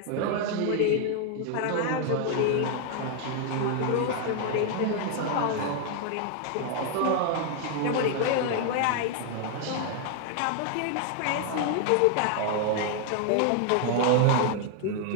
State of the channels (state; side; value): different; both; correlation 0.00